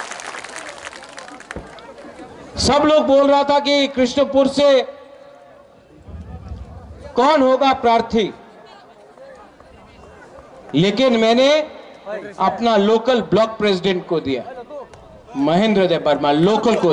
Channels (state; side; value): identical; both; correlation 1.00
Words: सब लोग बोल रहा था कि कृष्णपुर से कौन होगा प्रार्थी, लेकिन मैंने अपना लोकल ब्लॉक प्रेसिडेंट को दिया, महेंद्र देव वर्मा, लोकल को